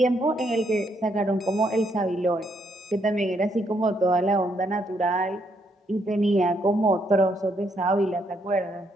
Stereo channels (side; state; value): both; normal; correlation 0.74